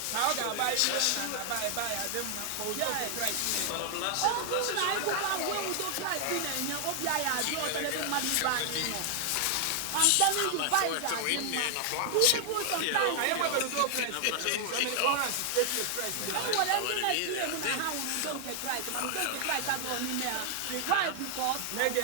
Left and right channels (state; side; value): different; both; correlation 0.00